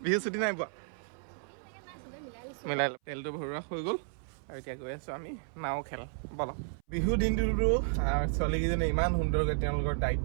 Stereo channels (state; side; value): silent; left; 56 dB below the other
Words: বিহু ছুটি নাই পোৱা? মিলাই তেলটো ভৰোৱা হৈ গ'ল আৰু এতিয়া গৈ আছো আমি নাও খেল। বলক। বিহু দিনটোতো ছোৱালীকেইজনে ইমান সুন্দৰকৈ তেওঁলোকৰ